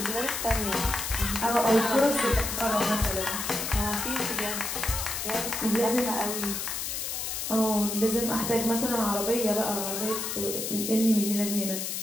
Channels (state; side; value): noise; left; hiss, 3 dB below the sound